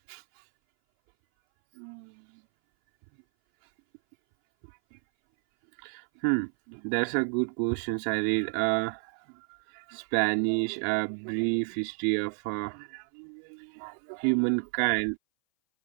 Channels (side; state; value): left; silent; 57 dB below the other